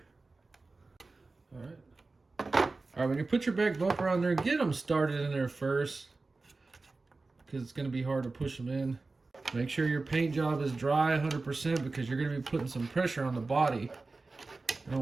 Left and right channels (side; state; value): left; quieter; 3.6 dB